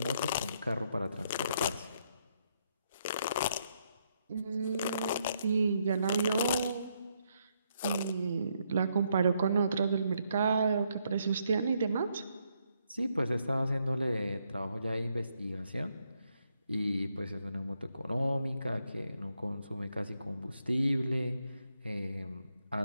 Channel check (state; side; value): inverted; both; correlation -0.76